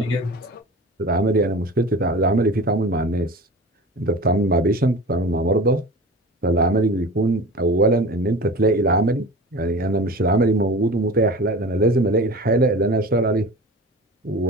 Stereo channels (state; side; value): normal; both; correlation 0.35